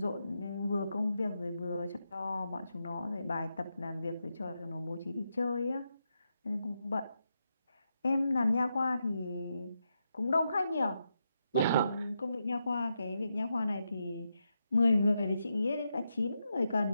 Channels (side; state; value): both; inverted; correlation -0.85